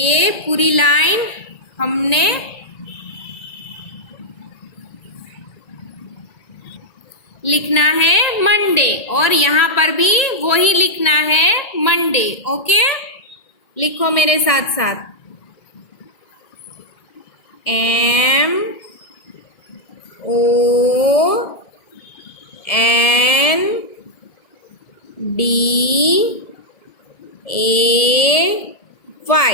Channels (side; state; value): right; late; 1.7 ms